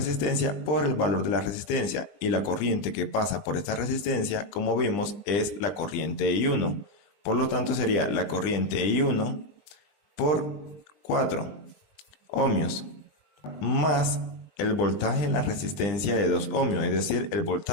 por el valor de la resistencia, y la corriente que pasa por esta resistencia, como vimos, es la corriente I1. Por lo tanto, sería la corriente I1 por 4 ohmios más el voltaje en la resistencia de 2 ohmios, es decir, el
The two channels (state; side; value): late; right; 20 ms